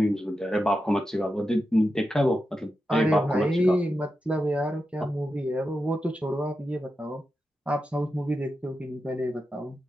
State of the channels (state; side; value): normal; both; correlation 0.89